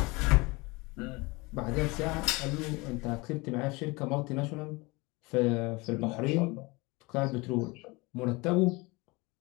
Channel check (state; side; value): quieter; right; 25.1 dB